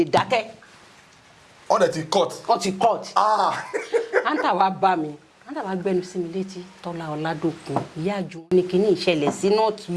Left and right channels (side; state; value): both; identical; correlation 1.00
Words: dákẹ́. wọ́n dẹ̀ ti cut. wọ́n ti cut. àǹtà wa bá mi àǹtà wa gbẹnu sí mi létí Tọ́lá Ọládòkun ìyá àjùmọ̀ ní kíní ìṣẹ̀lẹ̀ sí not